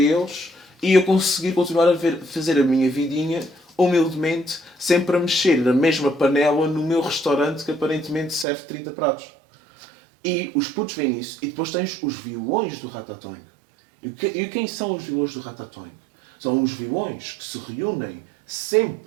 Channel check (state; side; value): drops out; left; at 8.5 s